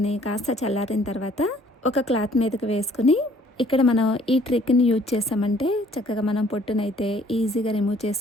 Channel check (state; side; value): normal; both; correlation 0.59